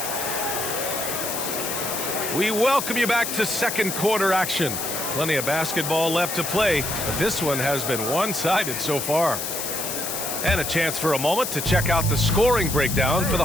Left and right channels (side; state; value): left; noise; hiss, 4 dB below the sound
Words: We welcome you back to second quarter action. Plenty of basketball left to play, but this one has been one-sided so far. And a chance for a moment to check out the scoring breakdown for the